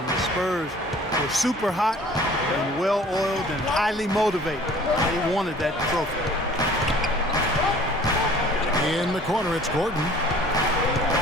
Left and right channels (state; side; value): normal; both; correlation 0.50